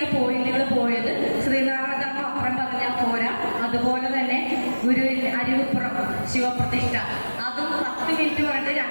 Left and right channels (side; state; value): both; inverted; correlation -1.00